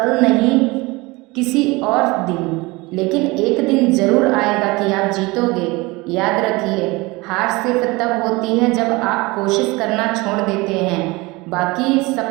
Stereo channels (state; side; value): quieter; left; 23.3 dB